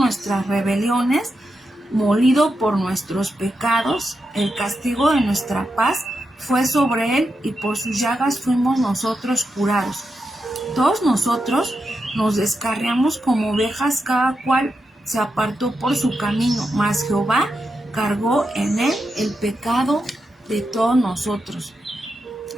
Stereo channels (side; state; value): both; normal; correlation 0.87